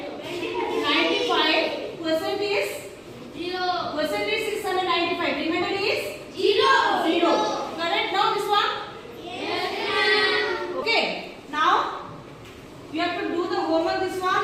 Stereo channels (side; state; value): both; identical; correlation 1.00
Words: Percent is 695. Remainder is 0. Correct now this one? Okay. Now you have to do the homework this one,